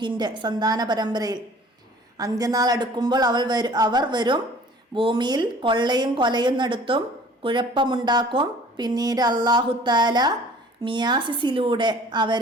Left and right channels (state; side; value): normal; both; correlation 0.50